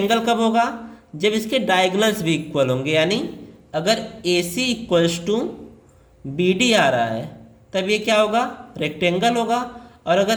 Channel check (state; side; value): identical; both; correlation 1.00